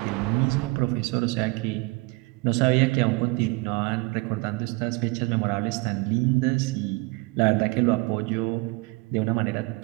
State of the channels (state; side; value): quieter; left; 25.6 dB